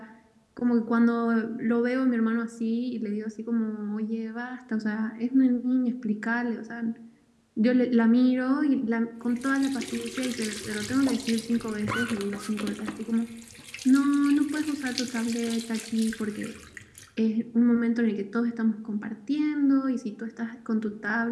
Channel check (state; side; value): identical; both; correlation 1.00